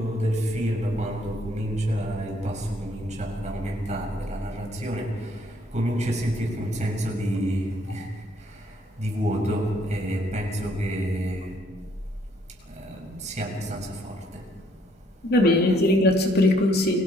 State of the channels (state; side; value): normal; both; correlation 0.67